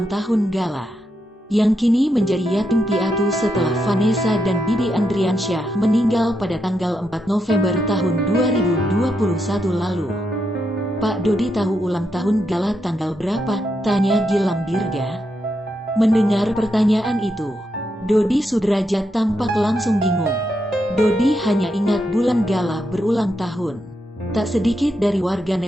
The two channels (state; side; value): normal; both; correlation 0.82